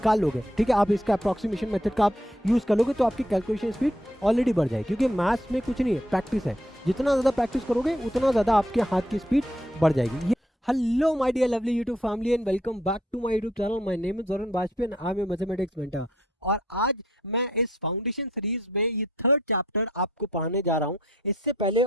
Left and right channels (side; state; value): both; normal; correlation 0.69